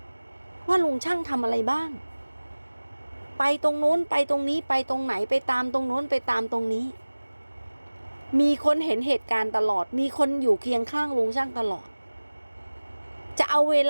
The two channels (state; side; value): inverted; both; correlation -1.00